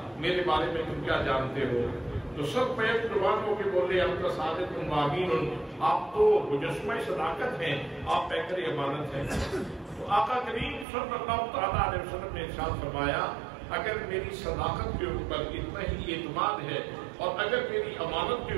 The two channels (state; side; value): drops out; left; at 10.9 s